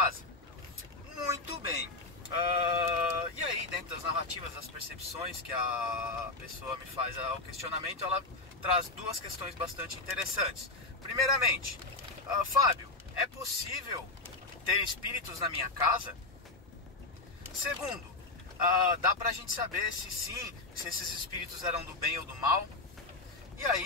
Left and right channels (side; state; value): right; quieter; 3.2 dB